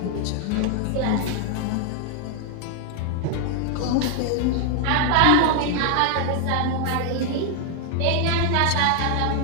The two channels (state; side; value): different; both; correlation 0.00